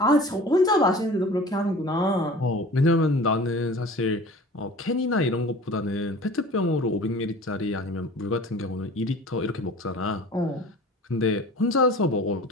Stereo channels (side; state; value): both; normal; correlation 0.42